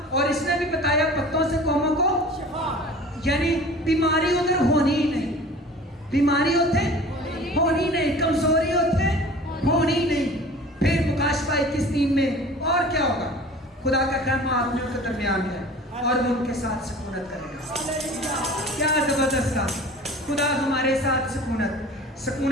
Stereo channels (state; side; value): normal; both; correlation 0.43